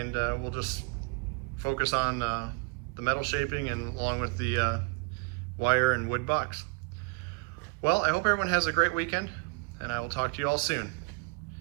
we'll just focus on the metal shaping and along with the wire and wood bucks. Well, I hope everyone has a great weekend, and I will talk to you all soon.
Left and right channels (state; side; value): quieter; left; 32.0 dB